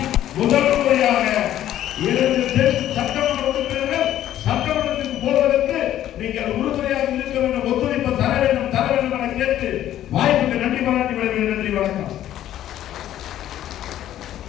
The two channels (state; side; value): quieter; right; 12.3 dB